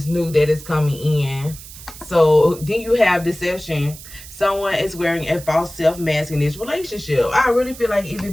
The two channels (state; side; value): noise; right; hiss, 16 dB below the sound